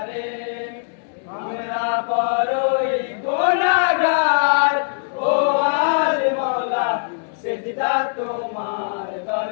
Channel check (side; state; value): right; silent; digital silence